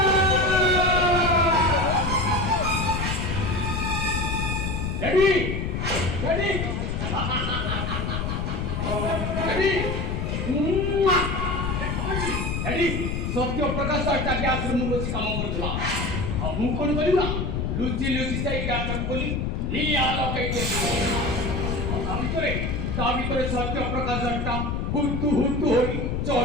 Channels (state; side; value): noise; left; rumble, 1 dB below the sound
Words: सत्य प्रकाश ग्यास बस कम करूला मु कौन करा लुचि लुचि जाए ग्यास खोली निया लगे सत्य प्रकाश हुतु हुतु हो